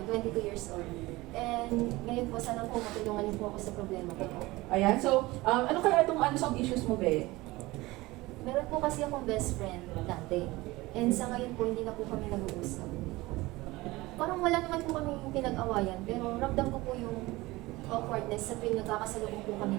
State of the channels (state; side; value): quieter; left; 20.4 dB